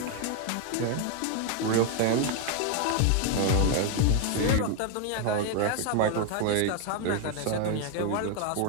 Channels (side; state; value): both; different; correlation 0.01